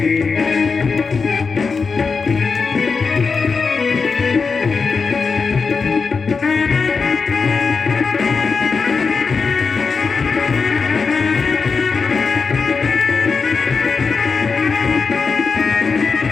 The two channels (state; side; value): quieter; right; 5.0 dB